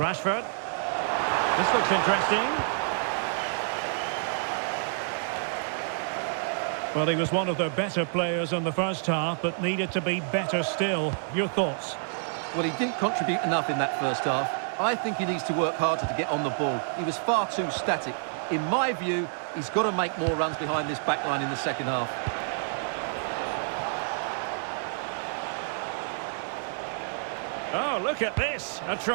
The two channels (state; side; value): silent; left; digital silence